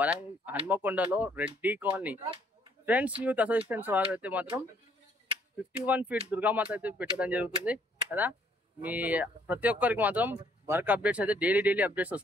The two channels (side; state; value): both; normal; correlation 0.66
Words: హన్మకొండలో Reddy colony. Friends youth associations వారు అయితే మాత్రం 51 ఫీట్ దుర్గామాత అయితే పెట్టడం జరుగుతుంది కదా. మీ ప్రతి ఒక్కరికి మాత్రం వర్క్ అప్డేట్స్ అయితే డైలీ అప్డేట్స్